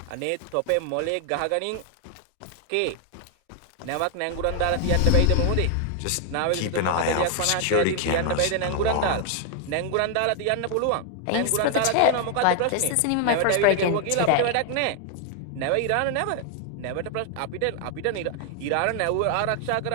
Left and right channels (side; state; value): both; different; correlation 0.00